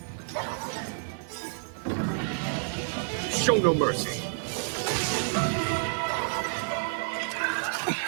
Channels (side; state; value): left; silent; 58 dB below the other